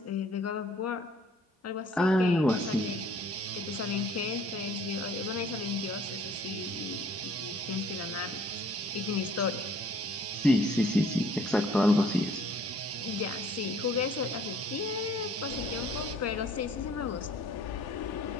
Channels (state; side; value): normal; both; correlation 0.56